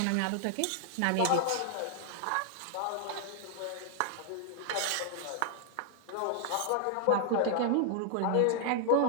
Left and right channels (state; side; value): different; both; correlation 0.00